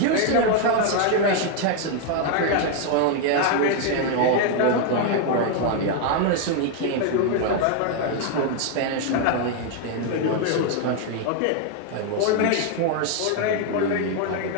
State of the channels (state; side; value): different; both; correlation 0.01